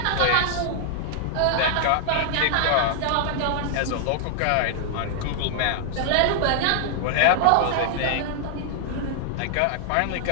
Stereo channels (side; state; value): both; different; correlation -0.01